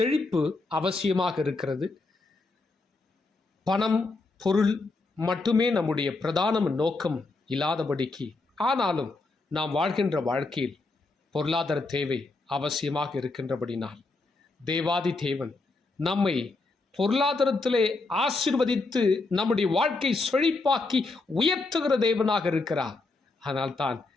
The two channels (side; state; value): right; quieter; 3.5 dB